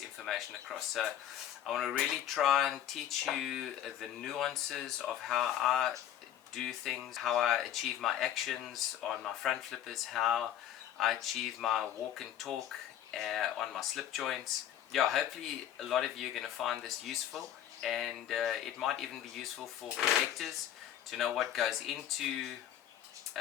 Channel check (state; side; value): quieter; right; 11.0 dB